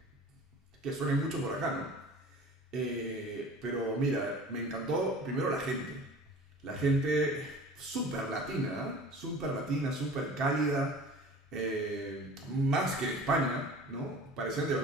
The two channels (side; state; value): both; normal; correlation 0.42